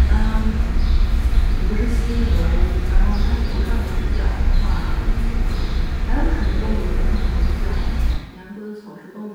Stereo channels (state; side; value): identical; both; correlation 1.00